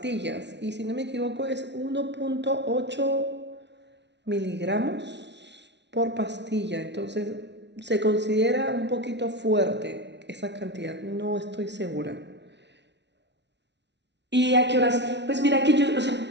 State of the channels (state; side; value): late; left; 0.51 ms